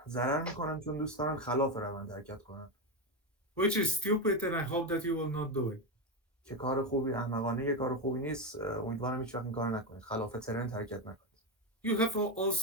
ضرر میکنن چون دوست دارن خلاف روند حرکت کنن. Which is stupid and I hope that you will not do it. که کار خوبی، احمقانه کار خوبی نیست. امیدوارم هیچ وقت این کار نکنید. خلاف ترند حرکت نکنید. You have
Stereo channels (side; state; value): both; normal; correlation 0.12